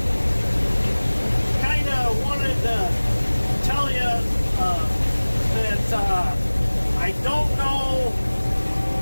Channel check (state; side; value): inverted; both; correlation -1.00